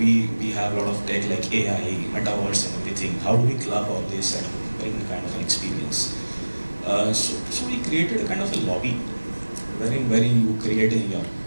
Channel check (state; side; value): inverted; both; correlation -1.00